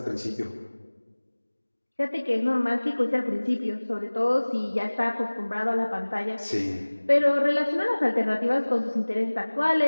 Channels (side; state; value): both; inverted; correlation -1.00